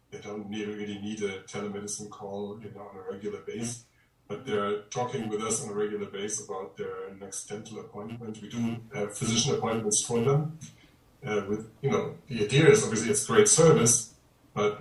They don't really need a telemedicine call, on a regular basis. But they're talking with us on a regular basis about their next dental appointment. We do physician appointments for them. The idea is obviously it's great service,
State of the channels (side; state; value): both; identical; correlation 1.00